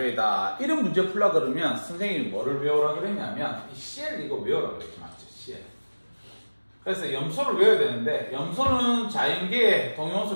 이런 문제 풀라 그러면 선생님이 뭐를 외우라 그랬냐면 이 CL 이거 외우라 그랬지, 맞죠? CL. 그래서 염소를 외워야 되는데 염소는 자연계에 동위원소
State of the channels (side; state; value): both; inverted; correlation -1.00